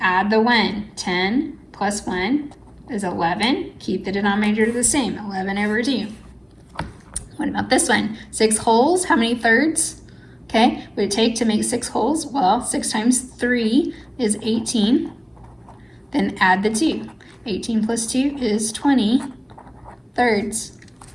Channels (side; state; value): both; identical; correlation 1.00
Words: add the 1. 10 plus 1 is 11. Keep the denominator the same, 11 over 2. What about this one? 6 wholes, how many thirds? Okay, what would it take to make 6 wholes? Well, 6 times 3 is 18. Then add the 2. 18 plus 2 is 20 thirds.